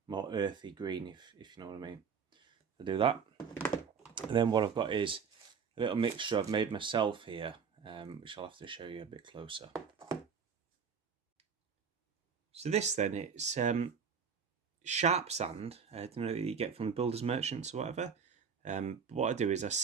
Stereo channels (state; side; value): quieter; left; 6.4 dB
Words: more earthy green, if you know what I mean. I'll do that. And then what I've got is a little mixture I've made myself here, which I'll have to show you a bit closer. So this then, it's sharp sand, that you get from the builders merchants or whatever. But what I do is I